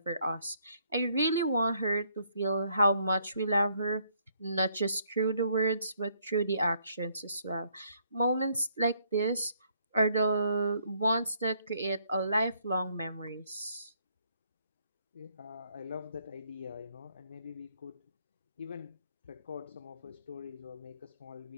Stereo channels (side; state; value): both; inverted; correlation -0.69